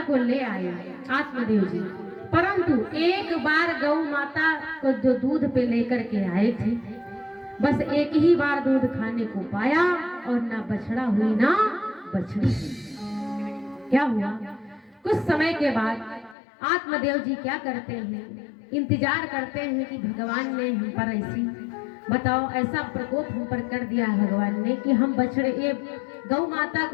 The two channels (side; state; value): right; drops out; at 16.4 s